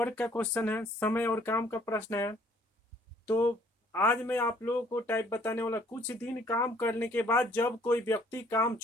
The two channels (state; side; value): normal; both; correlation 0.61